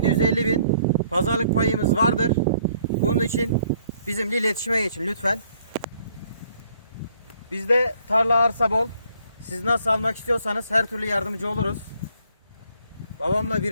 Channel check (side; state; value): both; inverted; correlation -0.64